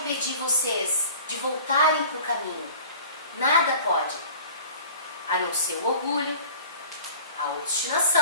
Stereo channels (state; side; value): inverted; both; correlation -0.46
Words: vocês de voltarem para o caminho. Nada pode. A não ser o orgulho, a